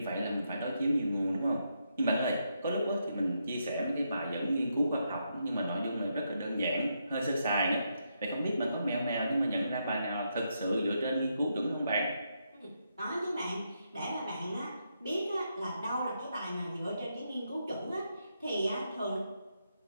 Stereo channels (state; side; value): inverted; both; correlation -0.81